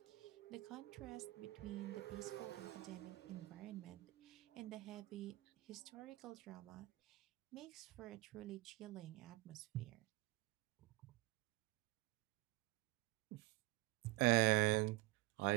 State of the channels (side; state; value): left; quieter; 20.7 dB